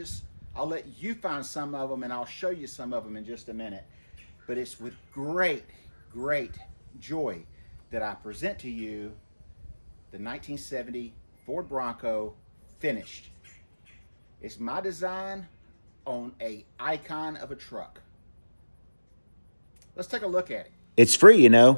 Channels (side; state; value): both; inverted; correlation -1.00